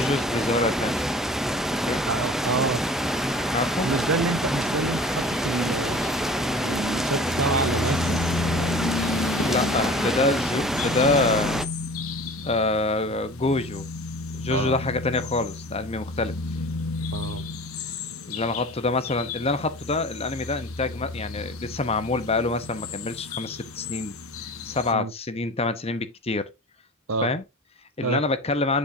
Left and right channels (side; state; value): both; normal; correlation 0.40